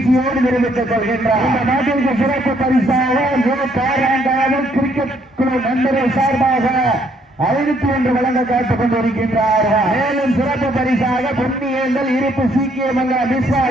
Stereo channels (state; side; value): normal; both; correlation 0.68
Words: தெரிவித்துக் கொள்கின்றார். இந்த நாட்டிற்கு சிறப்பு பரிசாக கிரிக்கெட் குழு நண்பர்கள் சார்பாக 501 வழங்க காத்துக் கொண்டிருக்கின்றார்கள். மேலும் சிறப்பு பரிசாக பொன்னியேந்தல் இருப்பு சீக்கிய மங்கலம் விஸ்வா